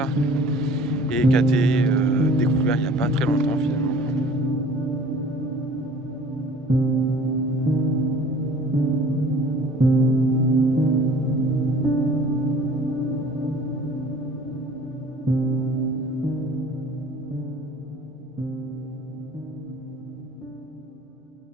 et qui a été découvert il n'y a pas très longtemps finalement.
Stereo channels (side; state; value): both; normal; correlation 0.48